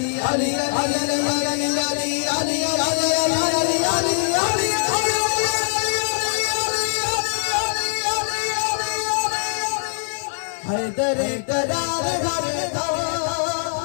हैदर करार करदा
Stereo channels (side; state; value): right; silent; digital silence